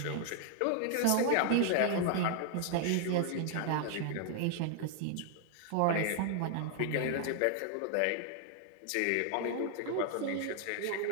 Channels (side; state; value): both; different; correlation 0.00